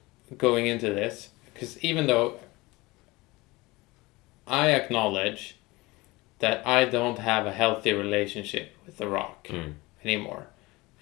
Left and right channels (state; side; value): quieter; right; 22.1 dB